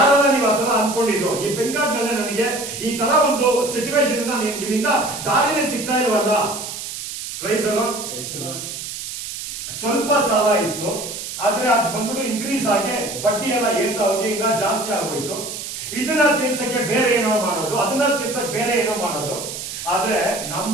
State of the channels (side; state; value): right; noise; hiss, 8 dB below the sound